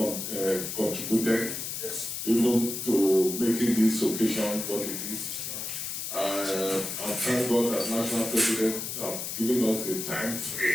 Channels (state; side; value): noise; left; hiss, 5 dB below the sound